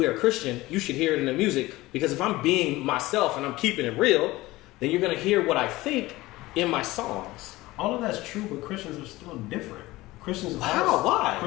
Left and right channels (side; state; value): right; quieter; 19.0 dB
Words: a Christian, you should hear it in the music, because if I'm being myself and I'm keeping it real, then you're going to hear what I think in my songs. All of that's true, but Christians are still different. Christians How? Why?